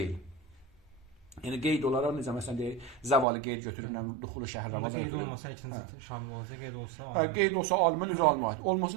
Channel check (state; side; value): drops out; left; at 3.2 s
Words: Yəni qeyd olaraq necə məsələn deyək, zəvali qeyd götürüb, duxulu şəhər Ramazan götürüb. Qeyd olmasa ikinci şamil olacaq, qeyd olsa alimə. Qeyd olsa alimə, üzə alimə aid.